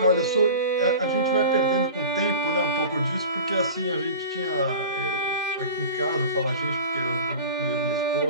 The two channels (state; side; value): inverted; both; correlation -0.36